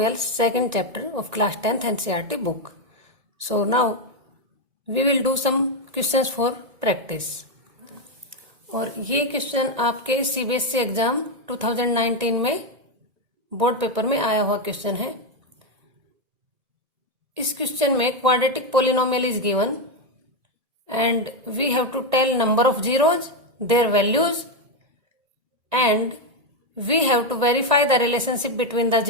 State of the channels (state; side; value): late; left; 1.9 ms